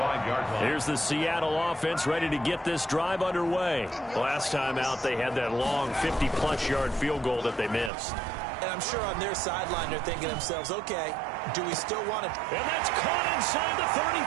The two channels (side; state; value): left; drops out; at 7.9 s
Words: line. Here's the Seattle offense ready to get this drive underway. Last time out, they had that long 50-plus yard field goal that they missed. And I'm sure on their sideline they're thinking to themselves, okay, do we still want it? And that's caught inside the